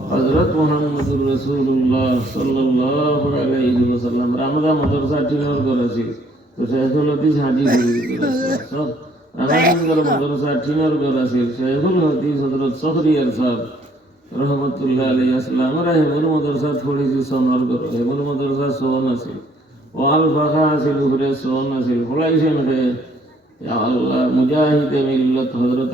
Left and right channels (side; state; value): both; normal; correlation 0.64